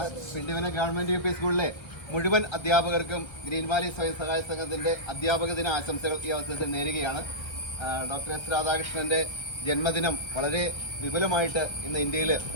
പിണ്ടിവന government U P സ്കൂളിലെ മുഴുവൻ അധ്യാപകർക്കും ഗ്രീൻ വാലി സ്വയം സഹായ സംഘത്തിന്റെ അധ്യാപക ദിന ആശംസകൾ ഈ അവസരത്തിൽ നേരുകയാണ്. ഡോക്ടർ എസ് രാധാകൃഷ്ണന്റെ ജന്മദിനം വളരെ വിപുലമായിട്ട് ഇന്ന് ഇന്ത്യയിൽ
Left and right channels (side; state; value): right; late; 1.4 ms